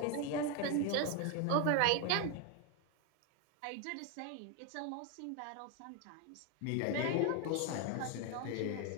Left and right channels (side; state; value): both; different; correlation 0.01